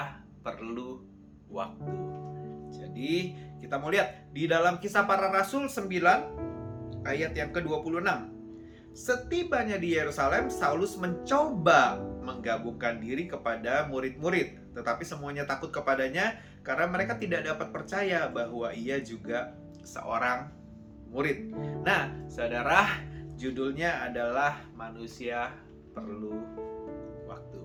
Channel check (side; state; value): both; identical; correlation 1.00